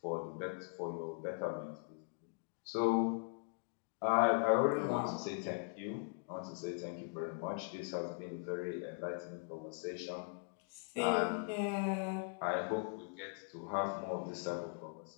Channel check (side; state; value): right; quieter; 37.9 dB